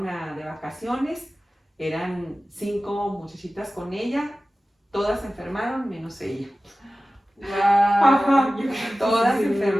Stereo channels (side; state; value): both; normal; correlation 0.96